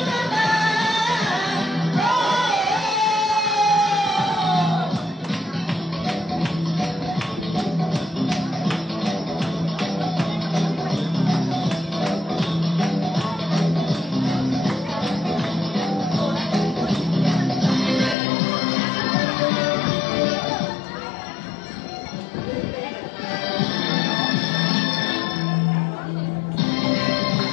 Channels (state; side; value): drops out; right; at 18.2 s